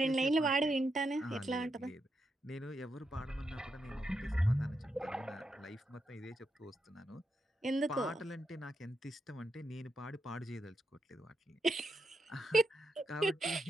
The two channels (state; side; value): normal; both; correlation 0.83